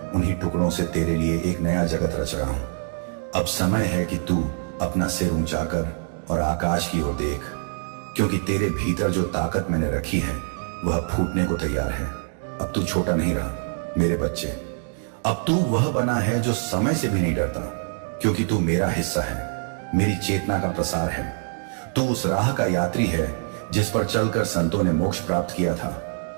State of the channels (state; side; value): silent; left; 62 dB below the other